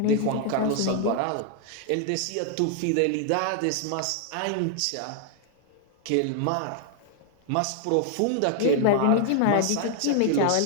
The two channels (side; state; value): both; different; correlation 0.00